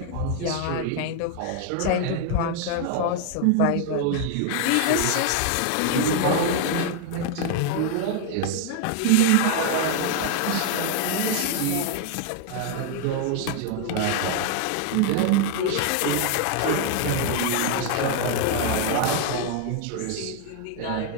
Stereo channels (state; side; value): different; both; correlation 0.00